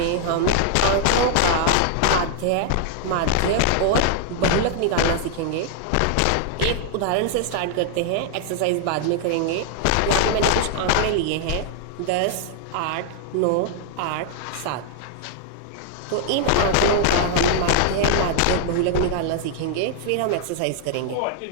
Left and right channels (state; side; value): different; both; correlation -0.01